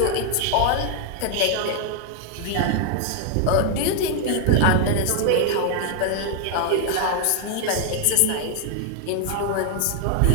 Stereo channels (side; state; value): both; different; correlation 0.00